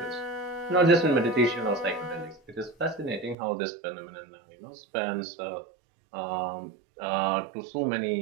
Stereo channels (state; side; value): drops out; left; at 3.4 s